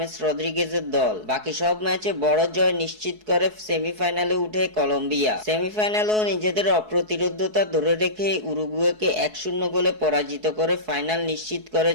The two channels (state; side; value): late; left; 4.7 ms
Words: রদ্রিগেজের দল। বাকি সব ম্যাচে বড় জয় নিশ্চিত করে সেমিফাইনালে উঠে কলম্বিয়া। সেমিফাইনালেও নিজেদের অপ্রতিরোধ্যতা ধরে রেখে উরুগুয়েকে 1-0 গোলে পরাজিত করে ফাইনাল নিশ্চিত